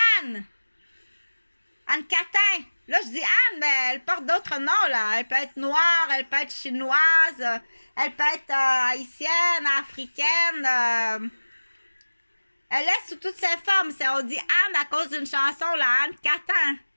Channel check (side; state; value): both; inverted; correlation -1.00